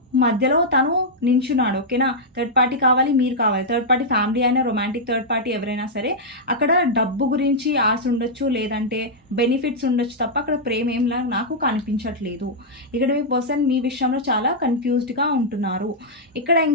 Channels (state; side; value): normal; both; correlation -0.07